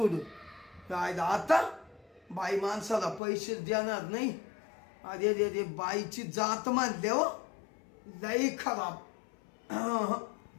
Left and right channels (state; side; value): drops out; right; at 3.2 s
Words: काय आता बाई माणसाला पैसे देणार नाही. अरे रे रे बाईची जात मानले हो, लई खराब.